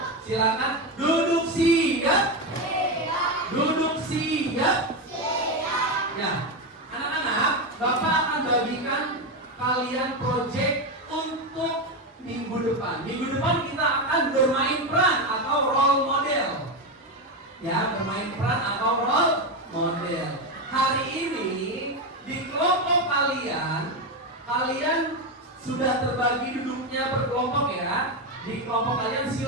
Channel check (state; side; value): normal; both; correlation 0.12